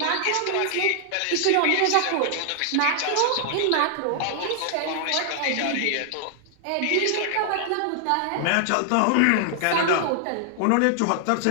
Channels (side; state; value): both; different; correlation 0.00